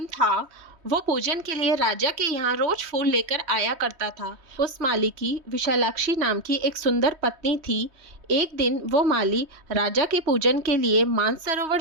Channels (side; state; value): left; late; 3.1 ms